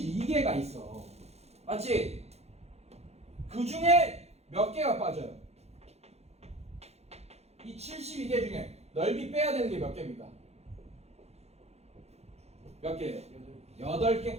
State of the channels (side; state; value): left; late; 0.31 ms